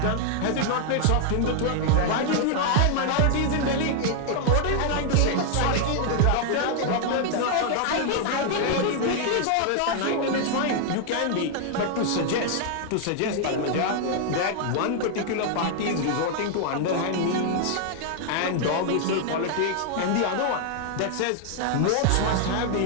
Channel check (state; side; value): different; both; correlation 0.00